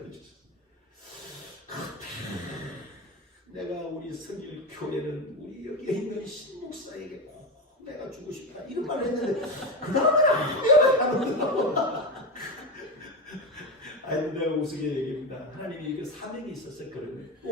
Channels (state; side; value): normal; both; correlation 0.16